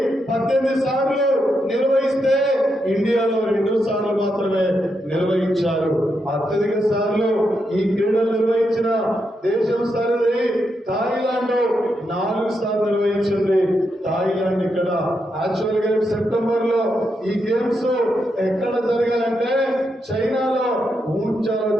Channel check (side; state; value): both; normal; correlation 0.83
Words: 18 సార్లు నిర్వహిస్తే ఇండియాలో 2 సార్లు మాత్రమే నిర్వహించారు. అత్యధిక సార్లు ఈ క్రీడలు నిర్వహించిన దేశం సరిది థాయిలాండ్ 4 సార్లు నిర్వహించింది. థాయిలాండ్ ఇక్కడ యాక్చువల్ గా సెప్టెంబర్ లో ఈ గేమ్స్ ఎక్కడ జరగాలంటే చైనాలో ఊంచాలో